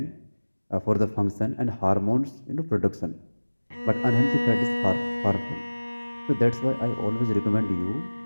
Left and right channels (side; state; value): both; inverted; correlation -1.00